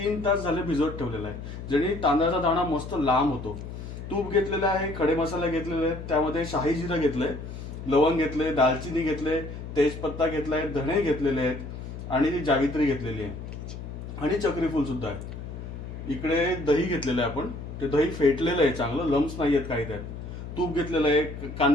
तास झाले भिजत ठेवलेला आहे, जेणे तांदळाचा दाणा मस्त लांब होतो. तूप घेतलेलं आहे, खडे मसाले घेतलेले आहेत, त्यामध्ये शाही जिरं घेतलंय, लवंग घेतले, दालचिनी घेतले, तेजपत्ता घेतलाय, धणे घेतलेले आहेत आणि जावित्री घेतलेली आहे आणि चक्रीफूल सुद्धा आहे. इकडे दही घेतलेलं आहे आपण, ते दही फेटलेलं आहे चांगलं, लम्स नाही आहेत काही त्यात. तूप घेतलेलं आहे,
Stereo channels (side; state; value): left; noise; hum, 9 dB below the sound